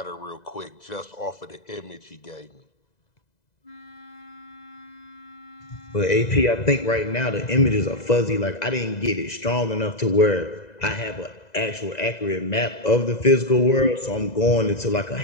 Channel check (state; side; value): late; right; 2.0 ms